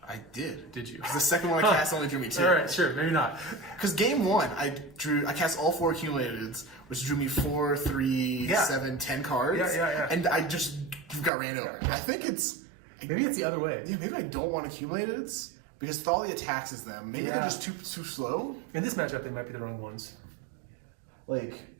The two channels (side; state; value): left; drops out; at 11.3 s